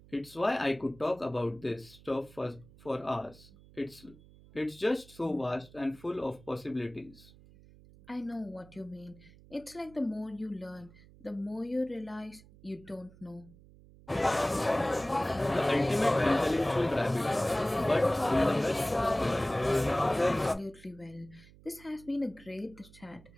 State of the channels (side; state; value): right; noise; hum, 23 dB below the sound